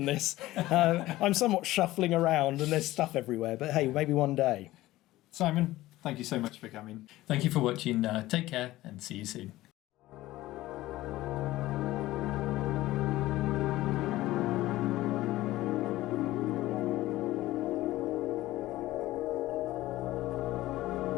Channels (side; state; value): right; quieter; 16.8 dB